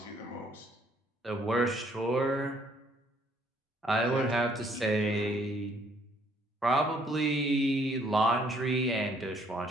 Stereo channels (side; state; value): both; normal; correlation 0.65